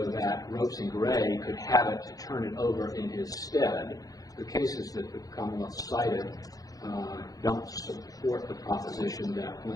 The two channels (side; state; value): right; late; 0.17 ms